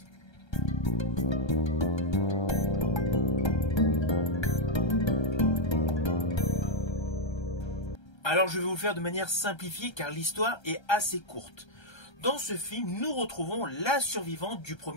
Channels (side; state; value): right; late; 1.3 ms